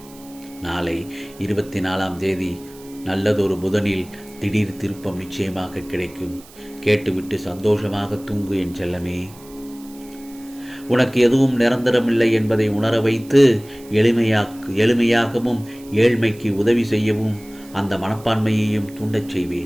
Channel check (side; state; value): right; noise; hiss, 23 dB below the sound